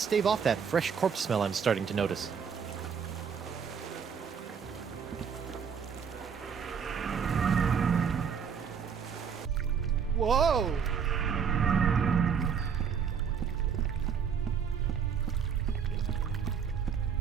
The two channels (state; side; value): quieter; left; 6.9 dB